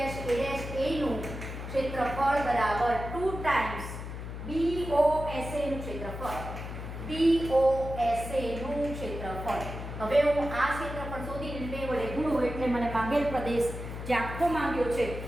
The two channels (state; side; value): noise; left; hum, 8 dB below the sound